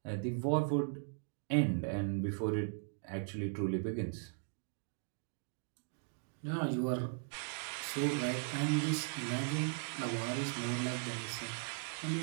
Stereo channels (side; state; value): left; silent; digital silence